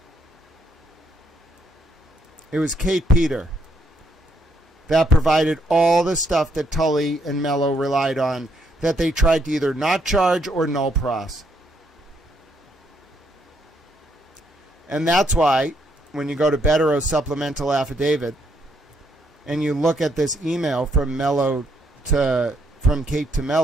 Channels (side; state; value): both; normal; correlation 0.73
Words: It was Kate Peter that provided all the stuff that Tully and Mello relied on, that they tried to either not charge or null pros. And that's why, when you go to Bettero's supplemental affidavit, and you look at this email from Kate to